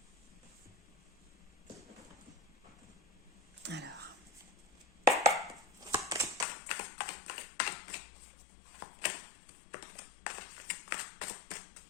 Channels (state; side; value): drops out; right; at 6.5 s